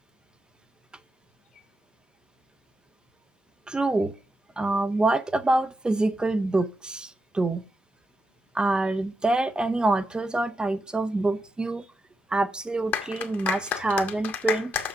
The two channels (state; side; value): normal; both; correlation 0.86